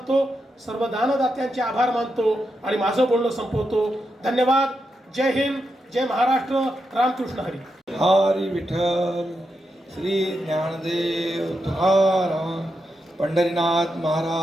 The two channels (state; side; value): normal; both; correlation 0.85